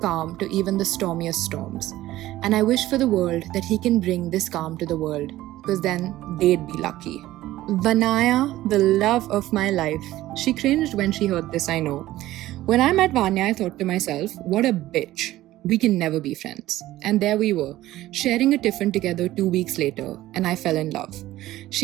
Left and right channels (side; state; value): left; quieter; 15.5 dB